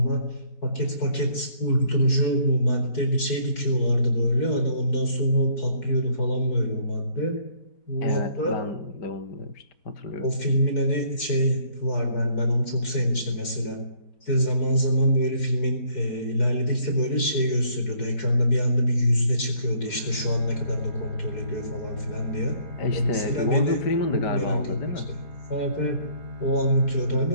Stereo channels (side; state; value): right; late; 4.7 ms